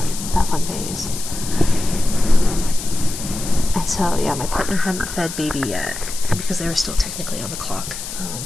phase. And so, yeah, my partner hadn't fed baby yet, because they were still technically on the clock.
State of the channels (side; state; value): left; noise; hiss, 9 dB below the sound